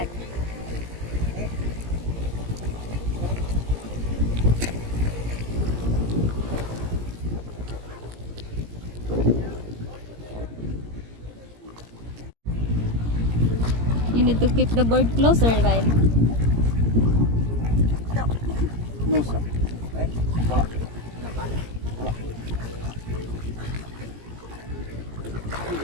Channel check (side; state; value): left; late; 17 ms